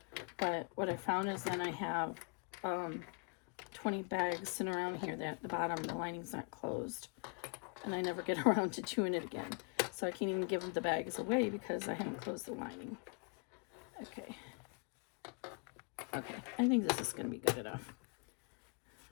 but what I found is then I have 20 bags sitting around here that the bottom, the lining's not closed, and I never get around to doing it again. So I can't even give the bags away because I haven't closed the lining. Okay. Okay, I think this is going to be good enough.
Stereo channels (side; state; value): right; quieter; 34.7 dB